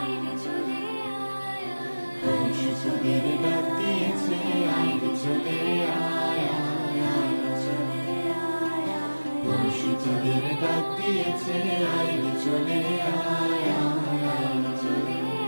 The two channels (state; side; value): inverted; both; correlation -1.00